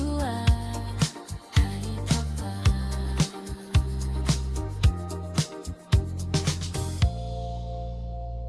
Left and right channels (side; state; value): both; identical; correlation 1.00